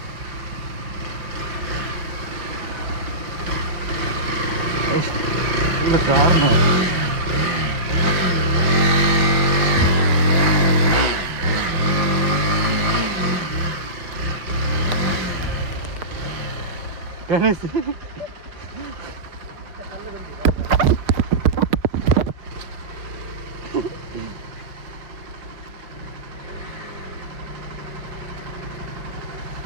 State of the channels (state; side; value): late; left; 5.6 ms